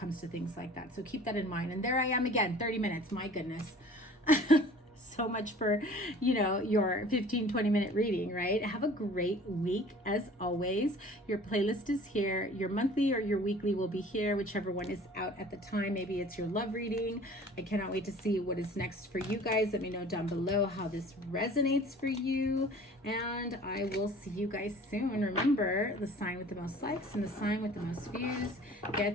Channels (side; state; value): both; normal; correlation 0.47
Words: to things like that. So keep that in mind. And there I am again, 30 minutes, my goodness. So much for, you know, your 15-20 minute reading, right? Have a great week as always. Your playlist is here. Your monthly or your weekly will be here, whichever one is out at the time. Maybe it's your love reading. I cannot wait to see what is next for you guys. Let me know down below how this resonates for you, and I will see you guys soon. Remember, the sign with the most likes and the sign with the most views